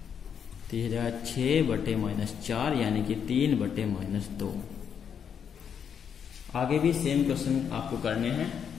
तो यह जाएगा 6/-4 यानी कि 3/-2। आगे भी सेम क्वेश्चन आपको करने हैं,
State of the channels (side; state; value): right; quieter; 7.7 dB